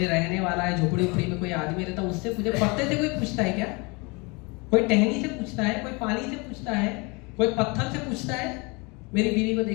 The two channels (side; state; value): right; quieter; 28.3 dB